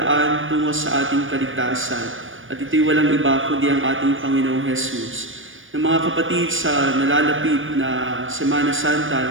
tungo sa ating kaligtasan. At ito'y walang iba kundi ang ating Panginoong Jesus. Na mga kapatid, sa nalalapit na Semana Santa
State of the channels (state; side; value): late; left; 0.57 ms